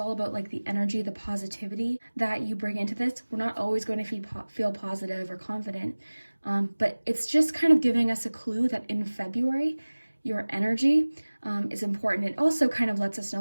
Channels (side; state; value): both; inverted; correlation -1.00